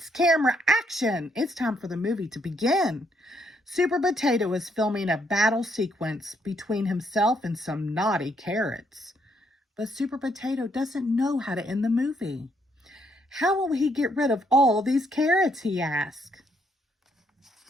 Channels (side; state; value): both; normal; correlation 0.73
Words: camera, action! It's time for the movie to begin. Super Potato is filming a battle sequence between himself and some naughty carrots. But Super Potato doesn't know how to end the movie. How will he get rid of all these carrots, he asks.